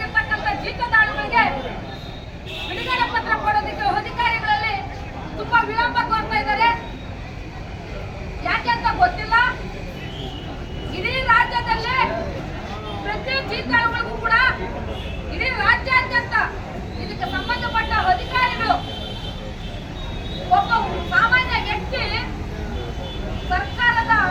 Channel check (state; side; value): identical; both; correlation 1.00